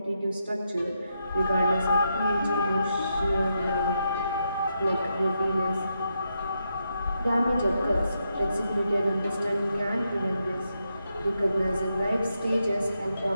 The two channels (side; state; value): both; inverted; correlation -0.83